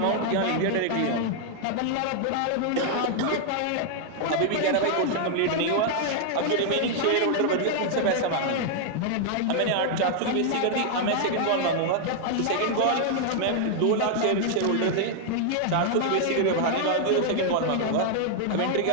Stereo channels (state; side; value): different; both; correlation 0.00